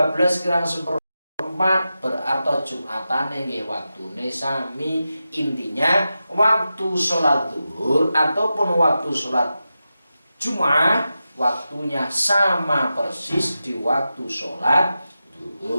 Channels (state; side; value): inverted; both; correlation -0.92